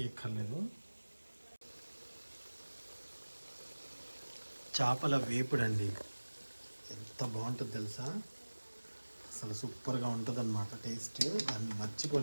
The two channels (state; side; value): inverted; both; correlation -1.00